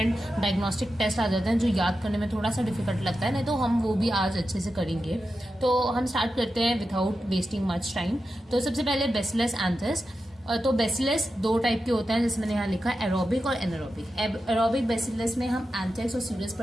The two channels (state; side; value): normal; both; correlation 0.90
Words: डायग्नोस्टिक टेस्ट आ जाते हैं जो याद करने में थोड़ा सा डिफिकल्ट लगता है, नहीं तो हम वो भी आज अच्छे से करेंगे। तो हम स्टार्ट करते हैं विदाउट वेस्टिंग मच टाइम। तो सबसे पहले बेसिलस एंथ्रेक्स। तो बेसिलस दो टाइप के होते हैं, जैसे मैंने यहाँ लिखा है एरोबिक और एनारोबिक। एरोबिक बेसिलस में हम एंथ्रेक्स और सीरस